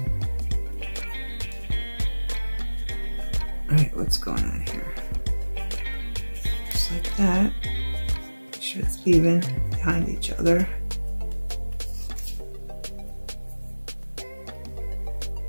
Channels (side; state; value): both; inverted; correlation -1.00